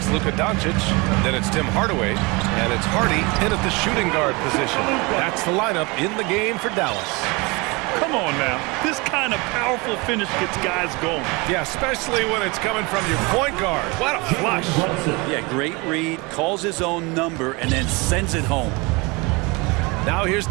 Luka Doncic. Then it's Tim Hardaway. And it's Hardy in at the shooting guard position. That's the lineup in the game for Dallas. Come on now. This kind of powerful finish gets guys going. Yeah, especially when it's coming from your point guard. What a flush. Yeah, great read, calls his own number, and then sends it home. Now here's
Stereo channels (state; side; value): quieter; left; 26.5 dB